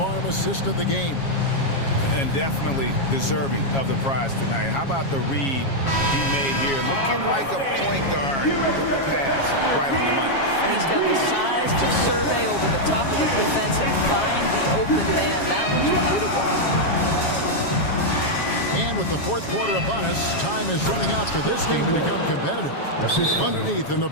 assist of the game. And definitely deserving of the prize tonight. How about the read he made here? Looking like a point guard with the pass right on the money. He's got the size to survey over the top of the defense and find the open man. That was beautiful. And with the fourth quarter upon us, time is running out for this game to become competitive. Underneath in the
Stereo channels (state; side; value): late; right; 7.3 ms